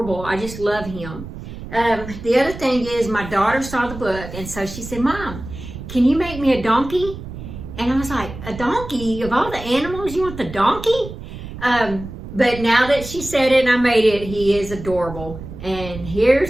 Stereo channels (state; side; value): noise; right; rumble, 11 dB below the sound